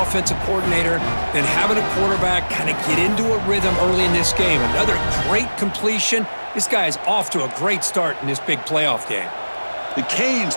coordinator than having a quarterback kind of get into a rhythm early in this game. Another great completion. This guy is off to a great start in this big playoff game. The Canes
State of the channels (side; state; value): both; inverted; correlation -1.00